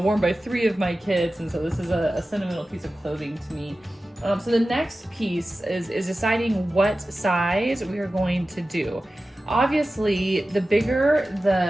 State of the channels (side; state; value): both; normal; correlation 0.95